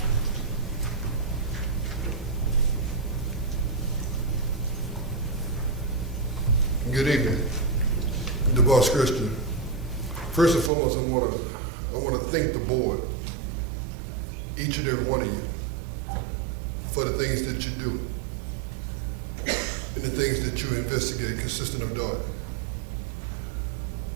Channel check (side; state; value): left; drops out; at 10.7 s